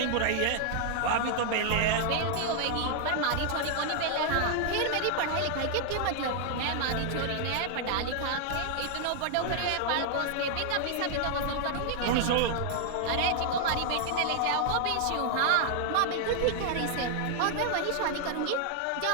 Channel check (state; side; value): different; both; correlation 0.00